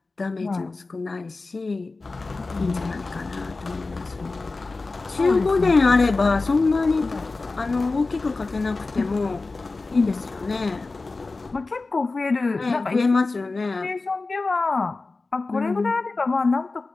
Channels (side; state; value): right; quieter; 3.6 dB